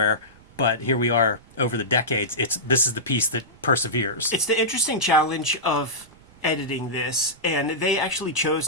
but here we are over the decades. This is the piece that perseveres. It's the interesting challenge of editing this, and they actually chose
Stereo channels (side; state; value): right; noise; rumble, 26 dB below the sound